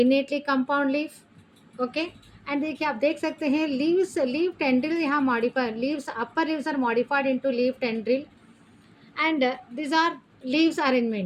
compound leaf. Okay and देखिए आप देख सकते हैं लीव टेंड्रिल यहाँ modified, leaves upper leaves are modified into leaf tendril and this are leaves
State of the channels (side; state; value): both; identical; correlation 1.00